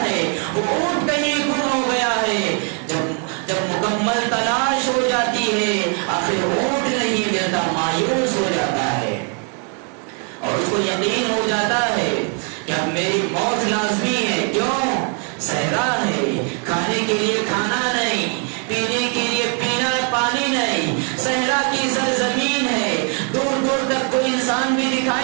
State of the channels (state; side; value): quieter; left; 39.8 dB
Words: ہے، وہ اونٹ کہیں گم ہو گیا ہے. جب مکمل تلاش ہو جاتی ہے آخر اونٹ نہیں ملتا، مایوس ہو جاتا ہے اور اس کو یقین ہو جاتا ہے کہ اب میری موت لازمی ہے. کیوں؟ صحرا ہے، کھانے کے لیے کھانا نہیں، پینے کے لیے پینا پانی نہیں، صحرا کی سرزمین ہے، دور دور تک کوئی انسان بھی